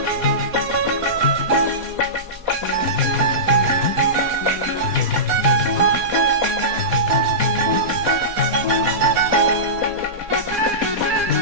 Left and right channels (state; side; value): late; left; 4.2 ms